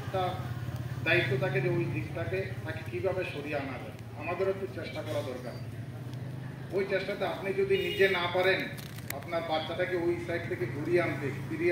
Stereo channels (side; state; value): both; identical; correlation 1.00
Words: একটা দায়িত্ব থাকে যে ওই দিকটাকে তাকে কীভাবে সরিয়ে আনা যায় আমাদেরও একটু চেষ্টা করা দরকার ওই চেষ্টাতে আপনি যদি নিজে না পারেন আপনার বাচ্চাটাকে ওই সাইড থেকে